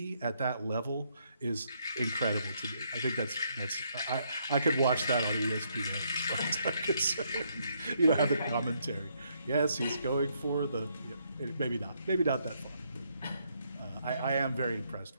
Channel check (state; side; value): inverted; both; correlation -0.73